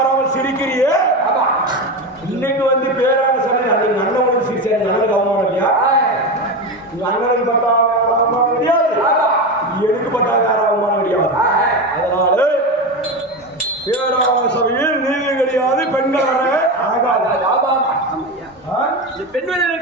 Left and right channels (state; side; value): normal; both; correlation 0.19